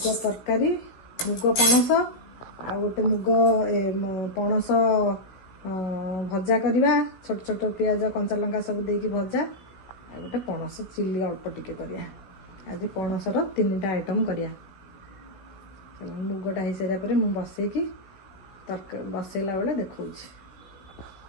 ତରକାରୀ, ମୁଗ ପଣସ ଆଉ ଗୋଟେ ମୁଗ ପଣସ ଭଜା କରିବା। ଛୋଟ ଛୋଟ ପିଆଜ କଞ୍ଚା ଲଙ୍କା ସବୁ ଦେଇକି ଭଜା, ଆଉ ଗୋଟେ ପଣସ ଚିଲି ଅଳ୍ପ ଟିକେ କରିବା। ଆଜି ପଣସର 3ଟା ଆଇଟମ୍ କରିବା। ମୁଗଟା ହେଇସାରିବା ପରେ ମୁଁ ବସେଇକି ବସେଇଲା ବେଳେ ଦେଖଉଛି।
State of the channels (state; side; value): late; right; 16 ms